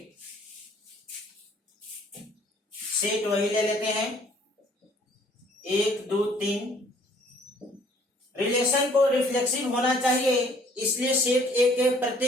Set वही ले लेते हैं 1 2 3। रिलेशन को रिफ्लेक्सिव होना चाहिए, इसलिए सेट ए के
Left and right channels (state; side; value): normal; both; correlation 0.59